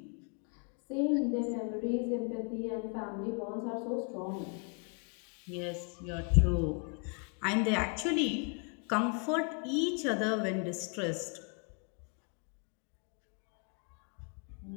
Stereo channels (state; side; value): quieter; right; 37.1 dB